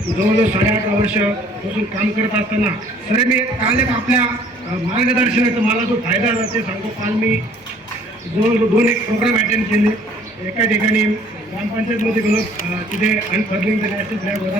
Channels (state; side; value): normal; both; correlation 0.57